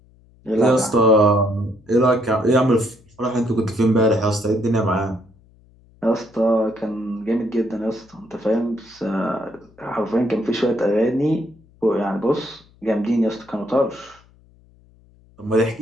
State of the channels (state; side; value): noise; left; hum, 29 dB below the sound